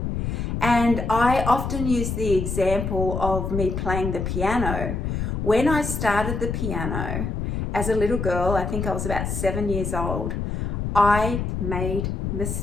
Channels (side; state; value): left; noise; rumble, 2 dB below the sound